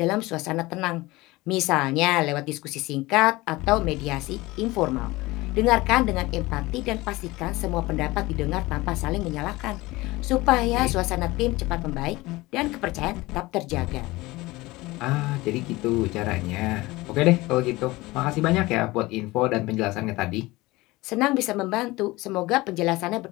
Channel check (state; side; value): quieter; right; 20.5 dB